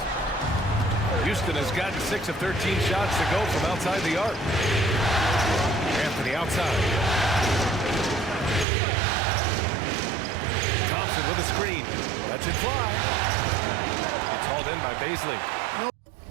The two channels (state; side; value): drops out; left; at 8.7 s